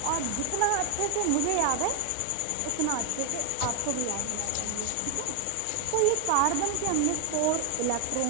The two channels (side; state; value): both; different; correlation 0.00